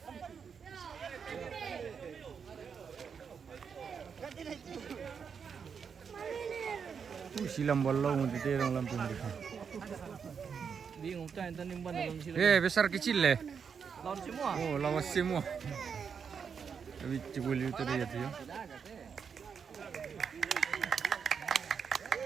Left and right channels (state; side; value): quieter; left; 6.5 dB